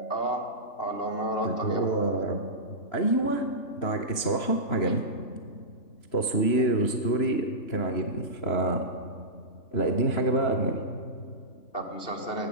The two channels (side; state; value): right; late; 3.0 ms